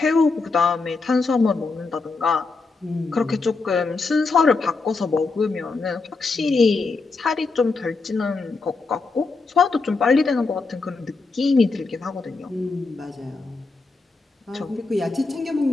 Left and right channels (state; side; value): quieter; right; 4.0 dB